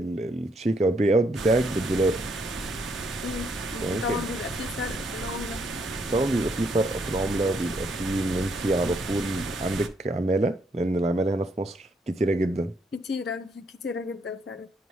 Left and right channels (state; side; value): normal; both; correlation 0.73